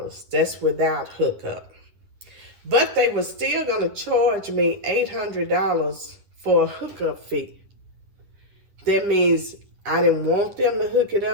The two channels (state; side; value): late; left; 10 ms